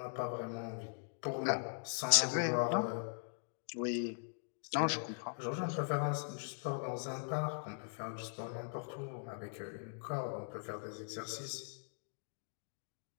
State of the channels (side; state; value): right; silent; digital silence